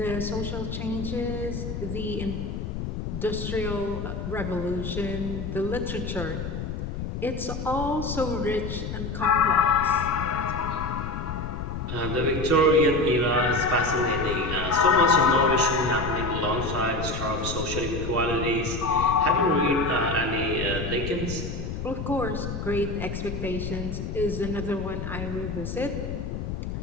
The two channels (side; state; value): left; noise; rumble, 5 dB below the sound